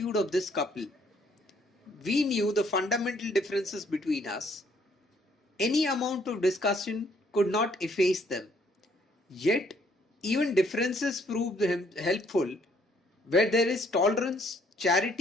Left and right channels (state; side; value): normal; both; correlation 0.66